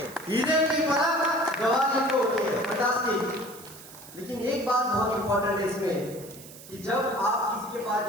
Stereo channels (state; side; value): noise; right; hiss, 17 dB below the sound